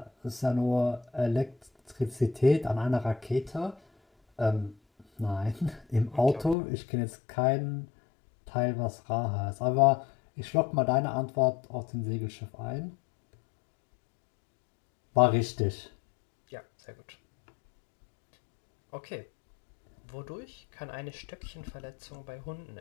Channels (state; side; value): drops out; right; at 6.6 s